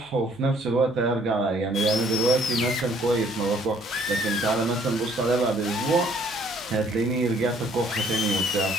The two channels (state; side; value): noise; right; hum, 27 dB below the sound